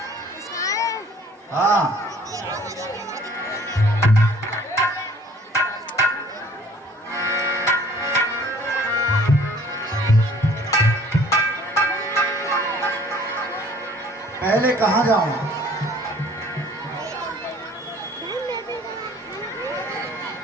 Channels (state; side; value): normal; both; correlation 0.54